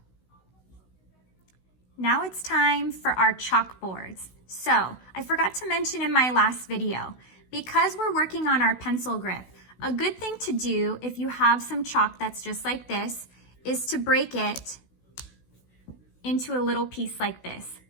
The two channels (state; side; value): late; right; 16 ms